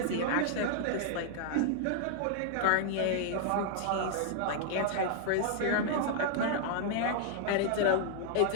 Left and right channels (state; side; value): different; both; correlation -0.01